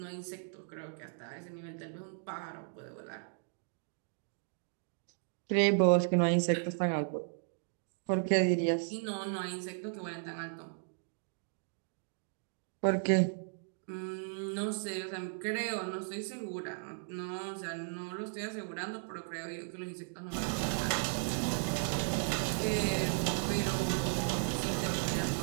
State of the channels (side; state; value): left; silent; digital silence